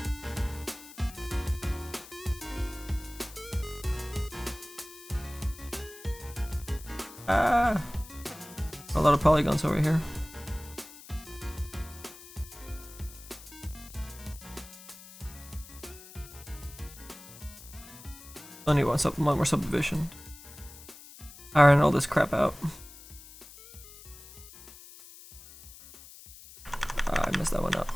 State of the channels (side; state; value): left; noise; hiss, 18 dB below the sound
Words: Ah! A lot of polygons over here. Only one more subdivision. Iron all this crap out. I messed that one up.